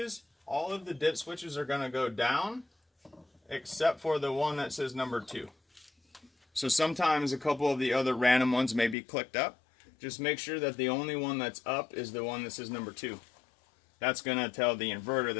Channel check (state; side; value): drops out; right; at 9.0 s